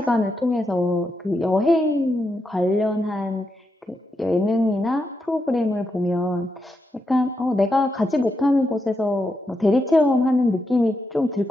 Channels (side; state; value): both; normal; correlation 0.84